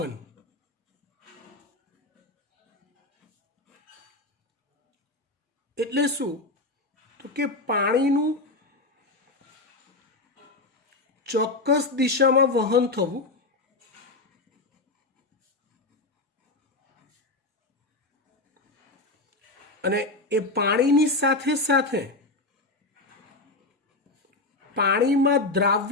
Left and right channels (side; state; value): right; quieter; 3.1 dB